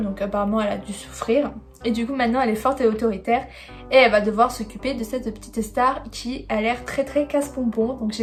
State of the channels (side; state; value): both; identical; correlation 1.00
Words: donc apparemment elle a dû souffrir. Et du coup maintenant elle est forte et autoritaire et elle va devoir s'occuper de cette petite star qui a l'air très casse-pompon. Donc